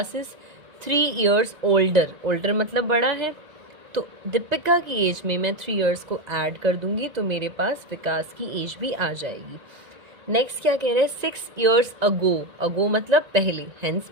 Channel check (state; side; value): late; left; 2.0 ms